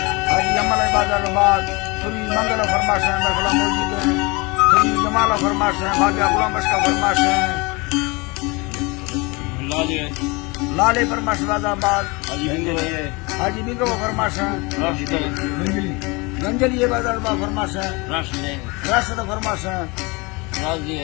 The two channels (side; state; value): right; quieter; 26.6 dB